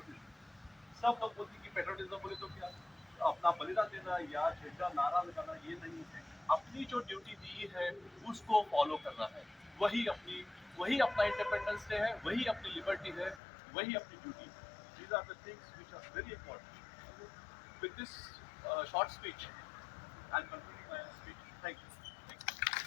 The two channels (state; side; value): drops out; right; at 13.4 s